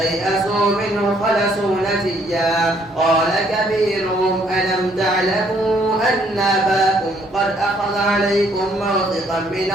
منه خلصوا نجيا قال كبيرهم ألم تعلموا أن أباكم قد أخذ عليكم موثقا من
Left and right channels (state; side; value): normal; both; correlation 0.66